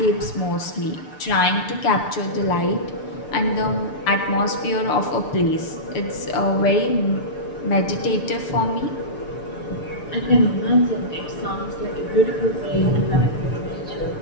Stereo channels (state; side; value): late; right; 6.7 ms